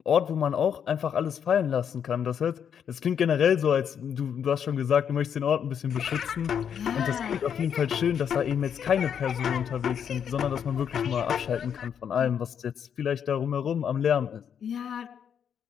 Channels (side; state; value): right; quieter; 8.1 dB